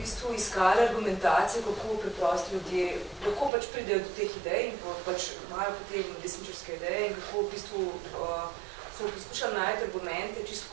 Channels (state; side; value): drops out; left; at 3.5 s